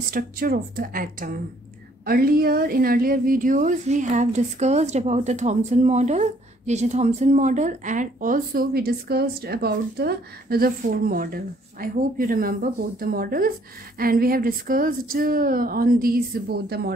structure of the atom. In earlier videos we have discussed about the Thomson model, J.J. Thomson model, and also we discussed about the Rutherford model. I hope you remember both the models, and we have discussed on these both the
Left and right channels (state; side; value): normal; both; correlation 0.63